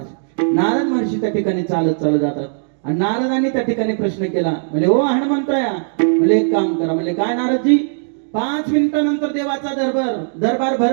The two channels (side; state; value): left; silent; digital silence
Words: नारद महर्षी त्या ठिकाणी चालत चालत जातात आणि नारदांनी त्या ठिकाणी प्रश्न केला, म्हणजे ओ हनुमंतराया, म्हणजे एक काम करा. म्हणजे काय नारदजी? 5 मिनिटानंतर देवाचा दरबार